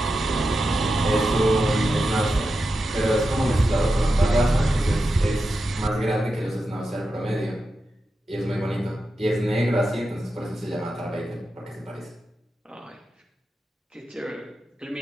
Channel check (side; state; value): both; normal; correlation 0.90